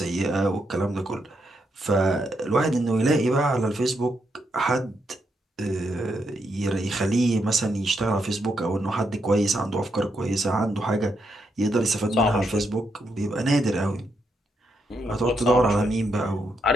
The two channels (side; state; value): both; normal; correlation 0.80